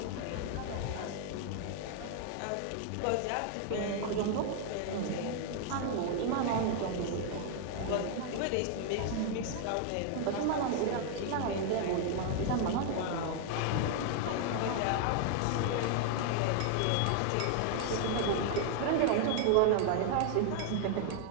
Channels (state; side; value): different; both; correlation 0.00